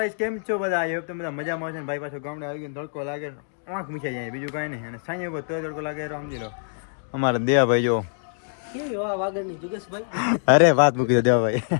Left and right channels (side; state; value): right; silent; digital silence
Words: કેમ છો બધા? આઈ હોપ તમે બધા મજામાં છો ને. ભાઈ પાછો ગામડે આવી ગયો, તડકો લાગે, આંખ મીચાઈ જાય, બીજું કાંઈ નહીં. અને સાંજે તો તડકો લાગે સમજી લો. અમારા દેવાભાઈ જો કેવી હવા વાગડની જુગેશભાઈ. અરે વાત મૂકી દો દેવાભાઈ.